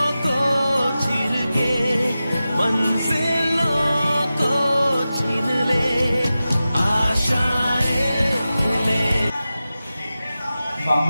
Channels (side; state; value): both; inverted; correlation -0.94